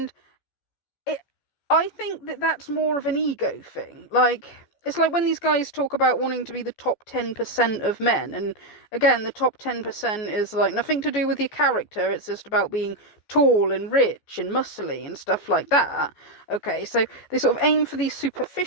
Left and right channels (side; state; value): right; late; 14 ms